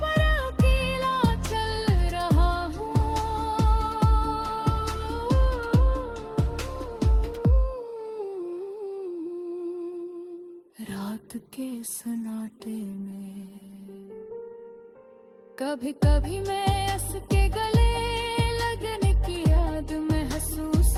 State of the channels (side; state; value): both; identical; correlation 1.00